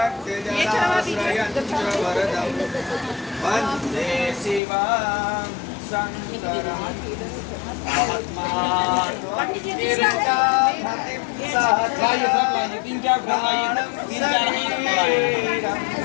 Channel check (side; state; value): right; drops out; at 4.6 s